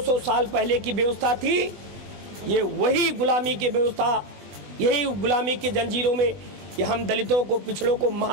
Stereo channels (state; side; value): late; left; 20 ms